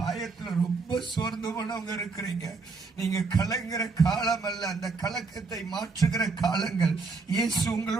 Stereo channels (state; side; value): quieter; left; 4.2 dB